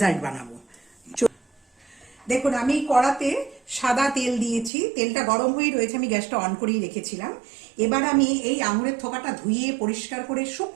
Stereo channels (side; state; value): left; drops out; at 4.7 s